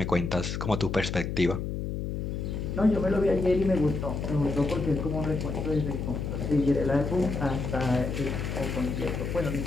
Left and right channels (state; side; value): noise; left; hum, 3 dB below the sound